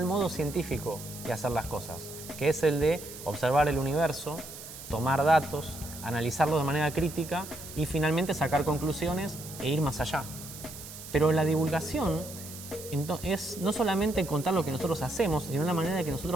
modo científico de hacer las cosas, que es el de observar el universo, tomar datos, analizarlos de manera crítica y finalmente sacar conclusiones e ir más allá. Pero la divulgación es no solamente contar lo que nosotros hacemos, sino la manera en que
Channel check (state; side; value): noise; right; hiss, 13 dB below the sound